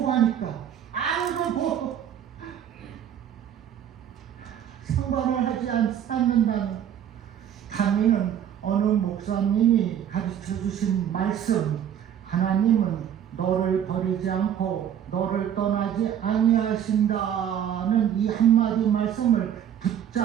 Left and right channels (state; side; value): quieter; left; 9.6 dB